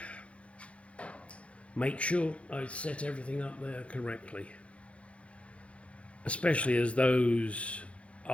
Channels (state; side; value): late; right; 0.062 ms